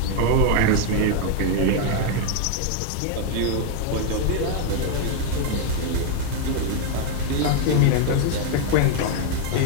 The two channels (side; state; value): both; different; correlation 0.01